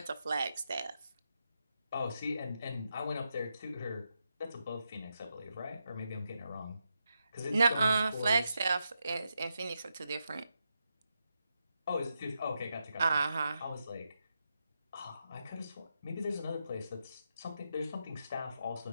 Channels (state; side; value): inverted; both; correlation -0.85